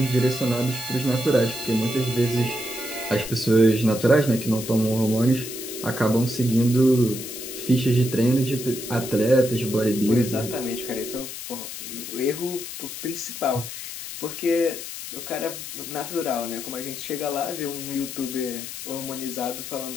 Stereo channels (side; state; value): left; noise; hiss, 9 dB below the sound